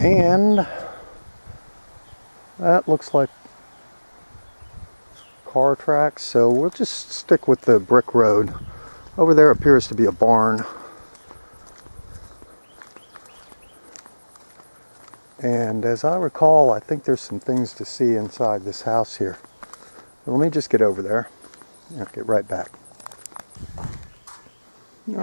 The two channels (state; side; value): inverted; both; correlation -1.00